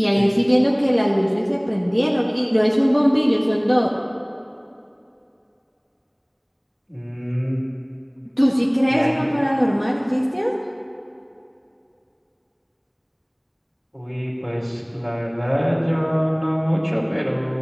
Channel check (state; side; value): identical; both; correlation 1.00